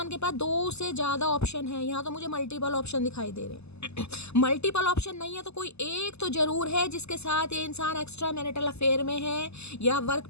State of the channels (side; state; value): right; late; 0.80 ms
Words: के पास 2 से ज़्यादा ऑप्शन है, यहाँ तो मुझे मल्टीपल ऑप्शन दिखाई दे रहे हैं। मल्टीपल ऑप्शन नहीं है तो कोई एक तो जरूर है जिसके साथ ये इंसान एक्स्ट्रा मैरिटल अफेयर में है, या वर्क